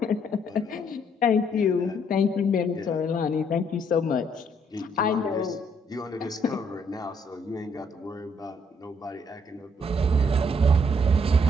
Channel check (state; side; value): normal; both; correlation 0.68